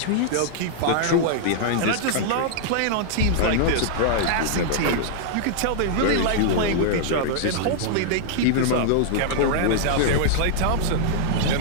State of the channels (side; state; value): both; different; correlation -0.01